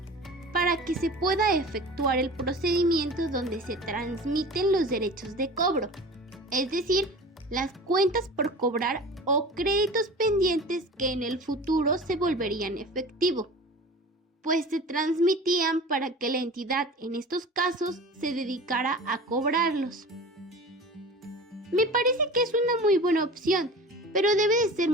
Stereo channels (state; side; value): normal; both; correlation 0.37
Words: para que se pueda efectuar el procedimiento donde se transmiten los derechos de cobro, es decir, las cuentas por cobrar o créditos pendientes que en el futuro se volverían efectivo, pues se transmitían para que la entidad en estos casos se dedicara a cobrarlos. Me parece que es una muy buena opción, pero debe de ser